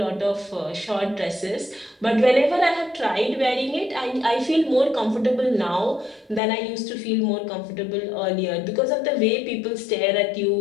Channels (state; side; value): drops out; right; at 6.4 s